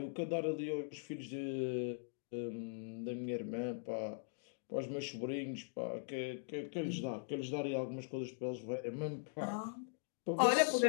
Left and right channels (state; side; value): silent; right; digital silence